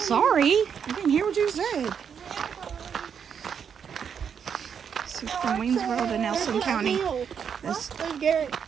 I didn't hear what you said. So from Waynesboro to Nelson County, this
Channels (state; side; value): quieter; left; 7.3 dB